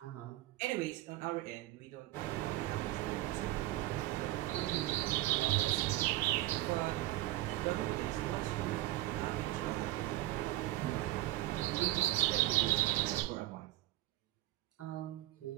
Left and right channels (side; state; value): left; quieter; 16.8 dB